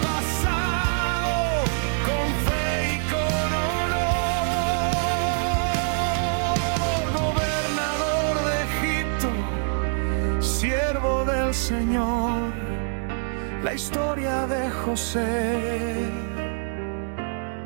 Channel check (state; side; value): silent; left; 58 dB below the other